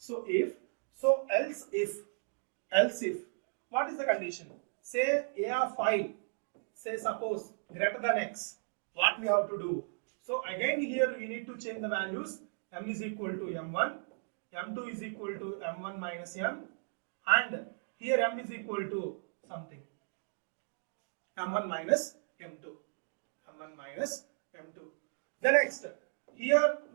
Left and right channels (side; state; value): left; silent; digital silence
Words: if, so else if. What is the condition? Say A of I, say suppose greater than X. What we have to do? So again here we need to change the values. M is equal to M1, M2 is equal to M1 minus M, and here M is equal to something. M1 minus M2. M1 minus M2. The next, here